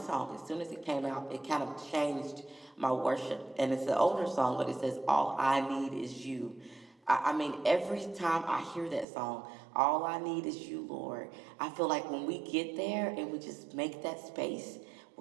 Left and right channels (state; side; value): drops out; left; at 9.1 s